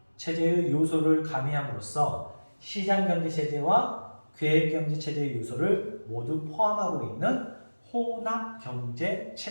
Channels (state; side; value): inverted; both; correlation -1.00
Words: 체제의 요소를 가미함으로써 시장경제 체제와 계획경제 체제의 요소를 모두 포함하고 있는 혼합경제